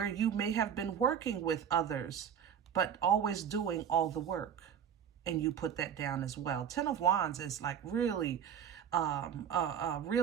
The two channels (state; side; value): quieter; left; 8.4 dB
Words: you may have been working with others, but always doing all the work. And you put that down as well. Ten of Wands is like really